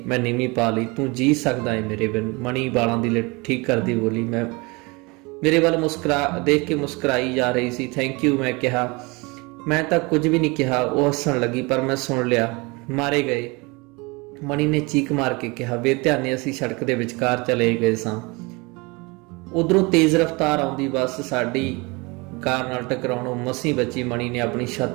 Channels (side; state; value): left; quieter; 26.6 dB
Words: ਮੈਂ ਨੀਵੀਂ ਪਾ ਲਈ। ਤੂੰ ਜੀ ਸਕਦਾ ਹੈ ਮੇਰੇ ਬਿਨ। ਮਣੀ ਵਾਲਾਂ ਦੀ ਲਿਟ ਠੀਕ ਕਰਦੀ ਬੋਲੀ। ਮੈਂ ਮੇਰੇ ਵੱਲ ਦੇਖ ਕੇ ਮੁਸਕਰਾਈ ਜਾ ਰਹੀ ਸੀ। ਥੈਂਕ ਯੂ ਮੈਂ ਕਿਹਾ। ਮੈਂ ਤਾਂ ਕੁਝ ਵੀ ਨਹੀਂ ਕਿਹਾ। ਉਹ ਹੱਸਣ ਲੱਗੀ, ਪਰ ਮੈਂ ਸੁਣ ਲਿਆ। ਮਾਰੇ ਗਏ, ਮਣੀ ਨੇ ਚੀਕ ਮਾਰ ਕੇ ਕਿਹਾ। ਬੇਧਿਆਨੇ ਅਸੀਂ ਸੜਕ ਦੇ ਵਿਚਕਾਰ ਚਲੇ ਗਏ ਸਾਂ। ਉਧਰੋਂ ਤੇਜ਼ ਰਫ਼ਤਾਰ ਆਉਂਦੀ ਬੱਸ ਸਾਡੀ ਕਾਰ ਨਾਲ ਟਕਰਾਉਣੋਂ ਮਸੀਂ ਬਚੀ। ਮਣੀ ਨੇ ਆਪਣੀ